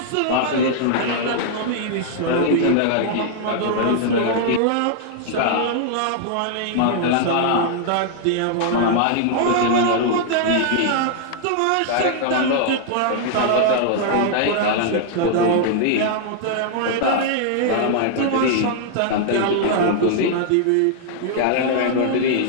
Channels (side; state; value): both; different; correlation -0.01